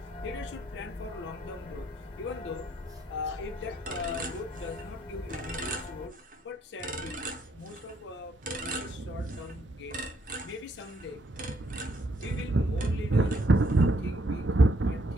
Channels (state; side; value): normal; both; correlation 0.70